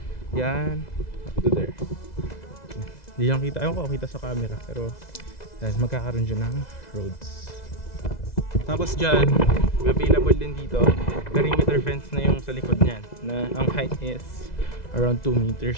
Yan, up to there. Hindi lang kita, ayun ko kita sa camera pero yan, magkakaroon dyan ng roads. Tapos dyan, available din dito perimeter fence na yung sa likod niyan na ang height is around 2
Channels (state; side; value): late; right; 2.0 ms